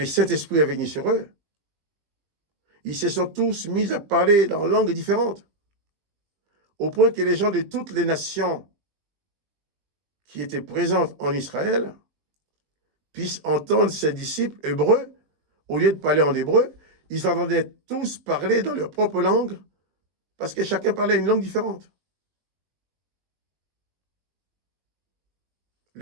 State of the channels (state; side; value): late; left; 20 ms